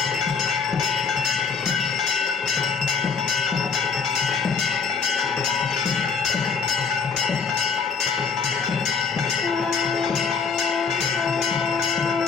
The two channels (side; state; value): right; quieter; 5.5 dB